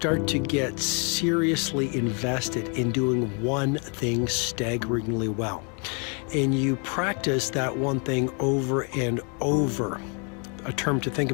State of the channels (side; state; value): right; quieter; 36.6 dB